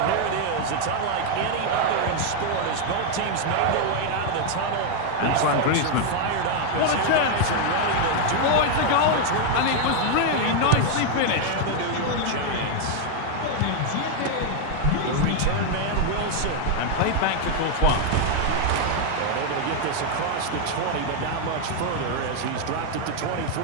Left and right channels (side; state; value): both; different; correlation 0.00